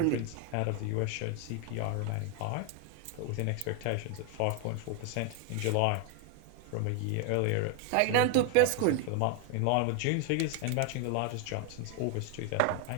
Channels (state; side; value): different; both; correlation 0.01